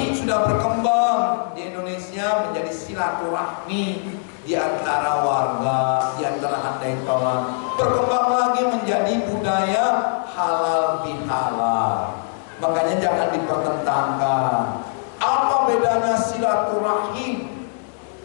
sudah berkembang di Indonesia menjadi silaturahmi di antara warga, di antara handai tolan. Berkembang lagi menjadi budaya halal bihalal. Makanya jangan dipertentangkan. Apa bedanya silaturahim,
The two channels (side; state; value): right; silent; digital silence